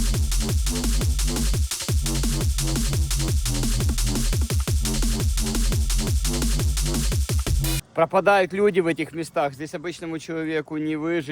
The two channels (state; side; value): identical; both; correlation 1.00